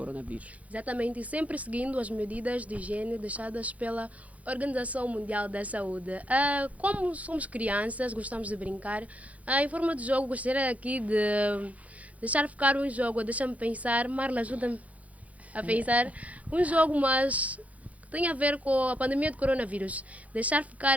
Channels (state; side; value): late; left; 0.068 ms